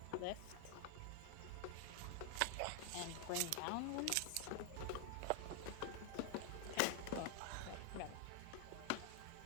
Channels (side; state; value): both; different; correlation 0.00